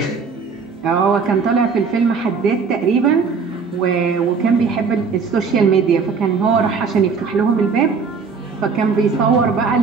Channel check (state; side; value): quieter; left; 5.3 dB